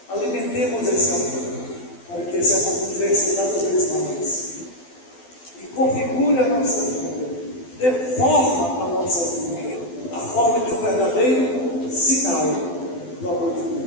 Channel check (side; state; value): right; late; 12 ms